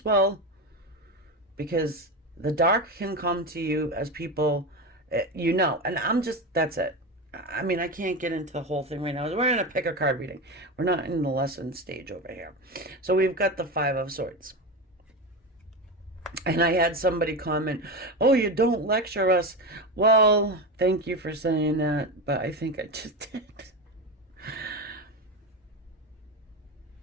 well. Because the dark can come to you as people, you know. And that's it. I mean, I can't get into the whole thing right now. We're in a pick a card reading. We're not in the lesson stage over here. So we've got the Five of Swords. And I had somebody comment, oh, you don't lecture us. Well, thank you for saying that, but I think I just did.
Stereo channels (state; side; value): normal; both; correlation 0.20